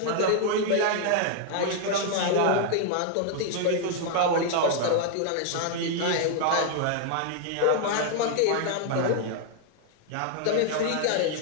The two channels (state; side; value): different; both; correlation 0.00